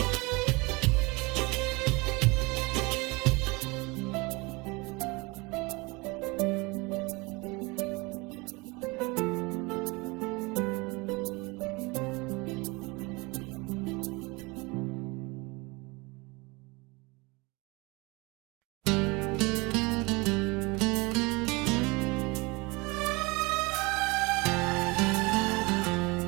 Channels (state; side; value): quieter; left; 26.0 dB